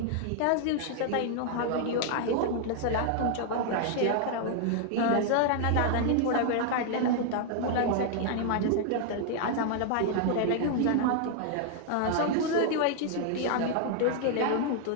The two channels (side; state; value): both; different; correlation 0.00